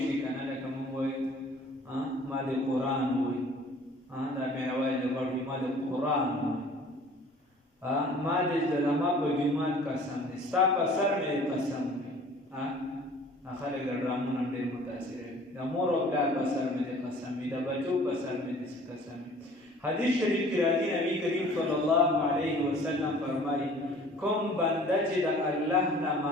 شي کنه لکه موږ وایو ما د قرآن وایو دا مې وایي د بړې ما د قرآن ما د زلما په جماعت قسم دی ستا په سر مې قسم دی خلک د ډرامونو ډېر متاثر دي د مور او پلار په سر مې قسم دی د بچو په سر مې قسم دی. حدیث شریف کی راځي نبی کریم صلی الله علیه وسلم فرمایي کوم بنده چې د الله نه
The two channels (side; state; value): both; normal; correlation 0.50